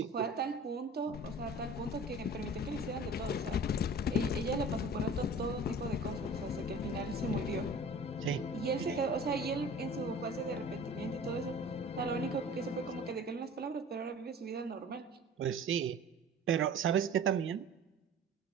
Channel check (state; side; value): normal; both; correlation 0.42